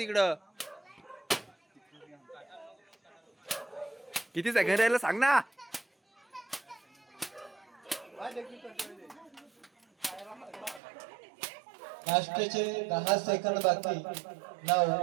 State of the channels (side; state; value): left; drops out; at 10.8 s